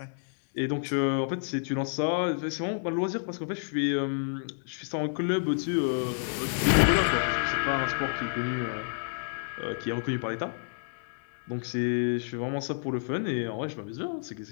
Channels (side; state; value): right; silent; digital silence